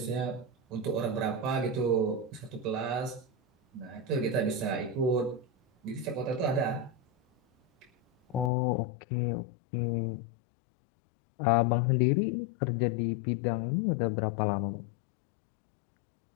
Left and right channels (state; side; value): drops out; right; at 8.5 s